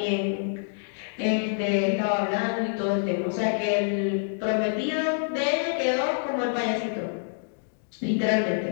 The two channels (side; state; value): right; silent; digital silence